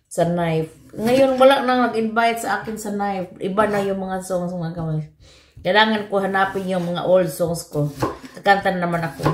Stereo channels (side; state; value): both; identical; correlation 1.00